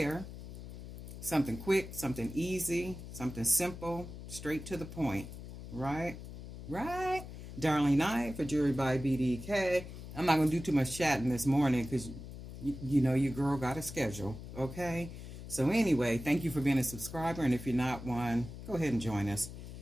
Something quick, something easy, something simple, straight to the point. Right? Right? Darlene Knight for Jewelry by BDK. I'm not going to do too much chatting this morning because, your girl got a schedule. Okay? So anyway, thank you for being a subscriber. And if you're not one, go ahead and join us.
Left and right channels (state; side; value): noise; left; hum, 11 dB below the sound